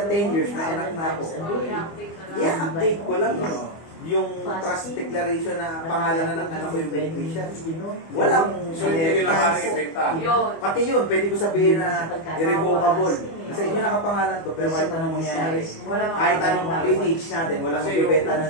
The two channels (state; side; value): late; right; 25 ms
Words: 10 years, na anak na ako. I-update ko lang yung trust declaration na pangalan na ng anak ko yung beneficiary. Wala mong so hindi nila maaaring ibenta. Yun. Pati yun, pwede ko sabihin na irrevocable. Sa inyo nakapangalan to, pero kahit anong mangyari, kahit anong lineage natin, walang magbibenta